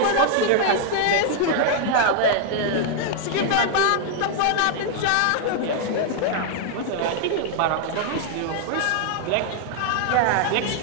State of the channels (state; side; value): different; both; correlation 0.00